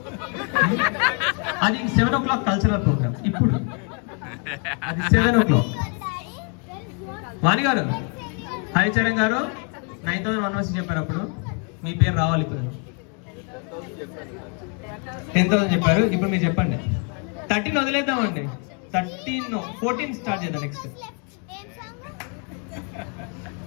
అది 7 o'clock కల్చరల్ ప్రోగ్రామ్. ఇప్పుడు అది 7 o'clock. వాణి గారు హరిచరణ్ గారు 9,116 చెప్పారు. అప్పుడు మీ పేరు రావాలి. ఇప్పుడు 10,000 చెప్పారు. ఇప్పుడు మీరు చెప్పండి. 13 వదిలేద్దామండి. 14 స్టార్ట్ చేద్దాం. నెక్స్ట్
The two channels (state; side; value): quieter; right; 38.7 dB